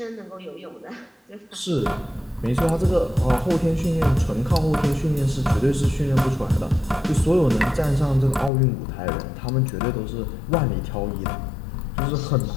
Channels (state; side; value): drops out; right; at 8.5 s